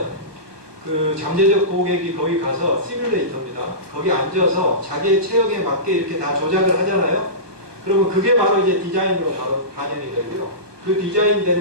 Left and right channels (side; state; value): left; late; 1.2 ms